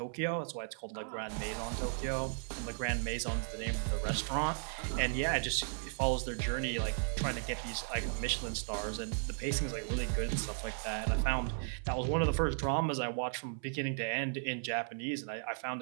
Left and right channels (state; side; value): silent; left; 54 dB below the other